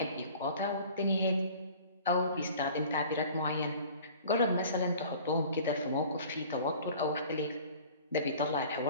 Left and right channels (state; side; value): inverted; both; correlation -0.46